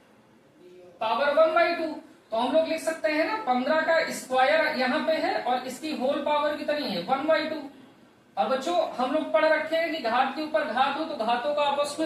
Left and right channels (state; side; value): identical; both; correlation 1.00